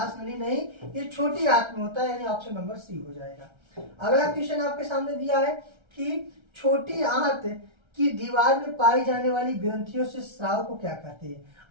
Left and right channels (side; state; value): left; late; 1.3 ms